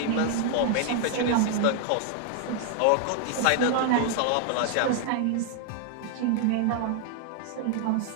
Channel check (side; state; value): both; different; correlation 0.00